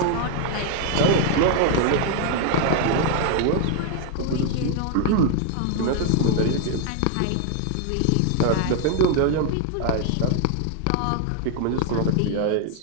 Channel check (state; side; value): different; both; correlation 0.00